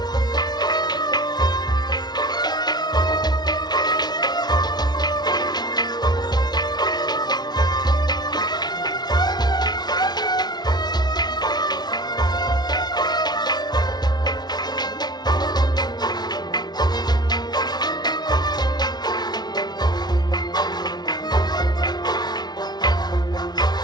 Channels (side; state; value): right; late; 0.20 ms